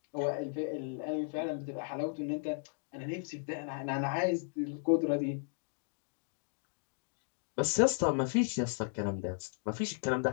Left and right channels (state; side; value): silent; right; digital silence